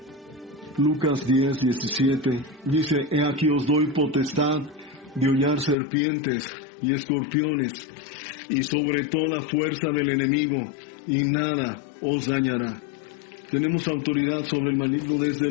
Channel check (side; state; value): right; drops out; at 5.8 s